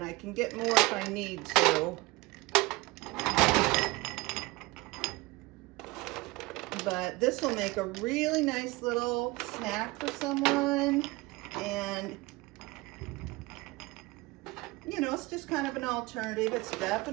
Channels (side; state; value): left; quieter; 22.5 dB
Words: I can get more if I need to. But this will make a really nice little snack for someone, and you know, it's just kind of an alternative. It's